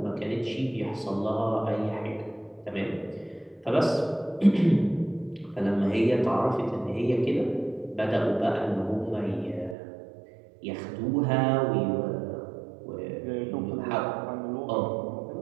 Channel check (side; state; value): left; drops out; at 9.8 s